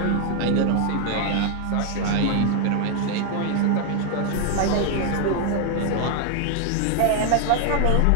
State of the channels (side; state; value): both; different; correlation 0.00